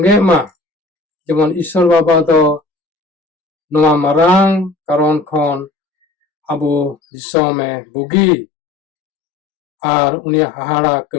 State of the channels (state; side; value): drops out; right; at 7.0 s